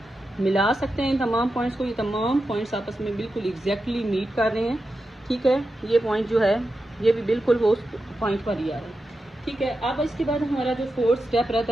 मिला सकते हैं इन तमाम पॉइंट्स को। ये तमाम पॉइंट्स आपस में बिल्कुल एग्जैक्टली मीट कर रहे हैं। ठीक है, ये पॉइंट जो है ये भी बिल्कुल वो उस पॉइंट पर ही आ रहा है। ठीक है, अब इसके बाद हमारा जो 4th स्टेप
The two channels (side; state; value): both; normal; correlation 0.90